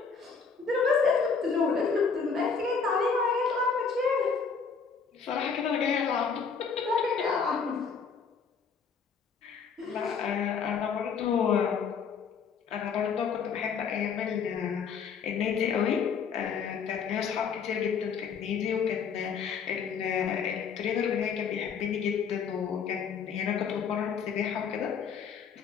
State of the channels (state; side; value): quieter; right; 5.9 dB